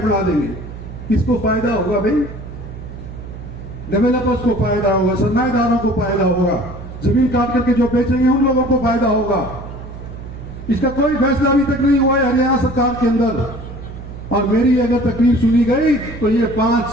बना देंगे। किसको फायदा होगा भाई? डेवलपर्स को फायदा होगा, सरमाएदारों को फायदा होगा, जमीन काट करके जो बेचेंगे उन लोगों को फायदा होगा। इसका कोई फैसला अभी तक नहीं हुआ है हरियाणा सरकार के अंदर। और मेरी अगर तकलीफ सुनी गई तो ये 5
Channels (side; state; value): right; noise; hum, 12 dB below the sound